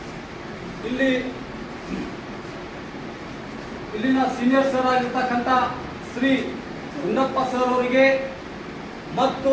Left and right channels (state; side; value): identical; both; correlation 1.00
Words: ಇಲ್ಲಿನ ಸೀನಿಯರ್ ಸರ್ ಆಗಿರ್ತಕ್ಕಂಥ ಶ್ರೀ ಗುಂಡಪ್ಪ ಸರ್ ಅವರಿಗೆ ಮತ್ತು